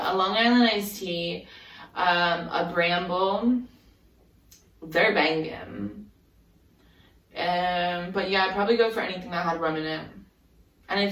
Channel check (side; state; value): both; identical; correlation 1.00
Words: a Long Island iced tea, a Bramble. They're banging. But yeah, I'd probably go for anything that had rum in it. And if